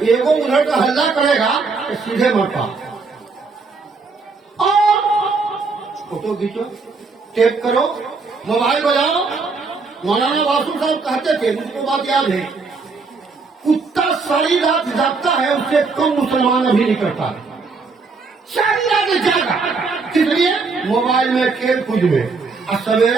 منٹ کا ہلہ کرے گا تو سیدھے مرتا، اور فوٹو کھینچو، ٹیپ کرو، موبائل بجاؤ۔ مولانا واسو صاحب کہتے تھے، مجھ کو بات یاد ہے، کتا ساری رات جاگتا ہے اس سے کم مسلمان ابھی نہیں کرتا، ساری رات جاگا، کس لیے؟ موبائل میں کھیل کود میں، اور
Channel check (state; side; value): quieter; left; 4.4 dB